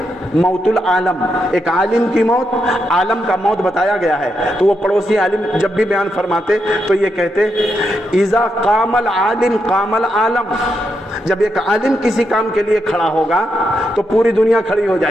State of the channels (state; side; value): normal; both; correlation 0.82